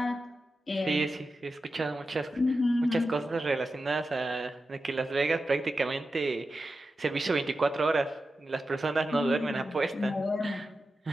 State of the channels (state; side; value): normal; both; correlation 0.91